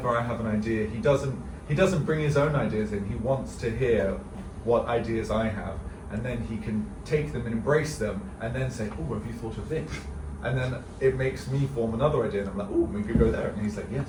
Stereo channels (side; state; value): both; identical; correlation 1.00